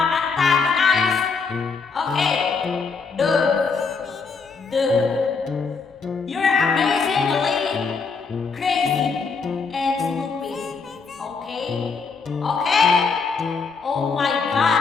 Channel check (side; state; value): right; quieter; 4.9 dB